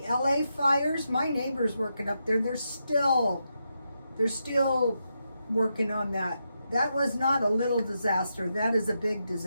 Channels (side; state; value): both; inverted; correlation -0.85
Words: LA fires, my neighbor's working up there. They're still working on that. That was not a little disaster. That is a big